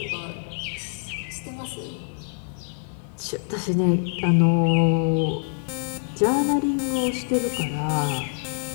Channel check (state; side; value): silent; right; digital silence